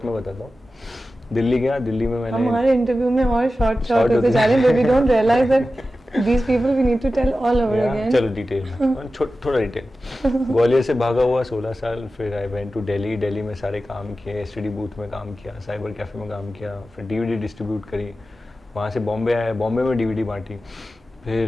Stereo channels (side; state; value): both; normal; correlation 0.94